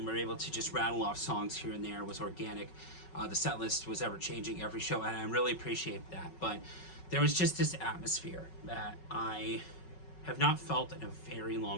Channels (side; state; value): right; late; 5.4 ms